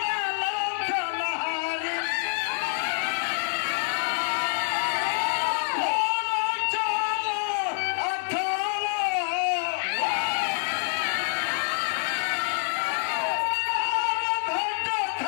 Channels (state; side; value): silent; right; 60 dB below the other